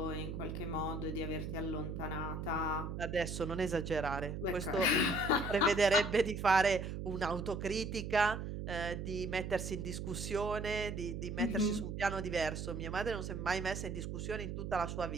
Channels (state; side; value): noise; right; hum, 5 dB below the sound